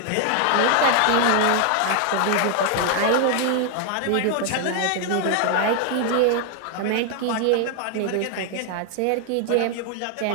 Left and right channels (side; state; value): both; different; correlation 0.00